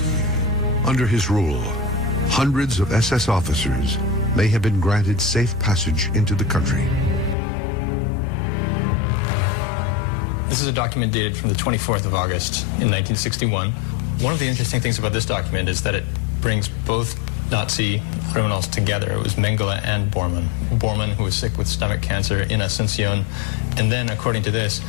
Under his rule, hundreds of SS officers may have been granted safe passage into the country. This is a document dated from the 24th of August in 1961. One of the interesting things about this document is that it brings both Nazi criminals together. It was Mengele and Bormann. Bormann, who was sick with stomach cancer in Asunción, and then, according to this,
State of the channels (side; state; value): right; drops out; at 7.4 s